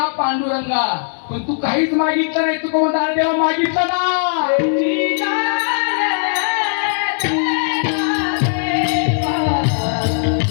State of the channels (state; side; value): silent; right; digital silence